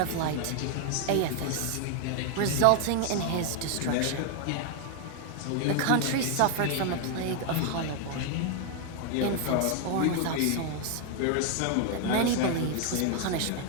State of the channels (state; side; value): different; both; correlation 0.01